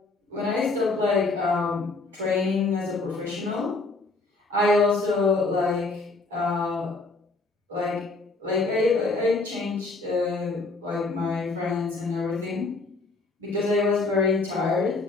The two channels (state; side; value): quieter; right; 3.5 dB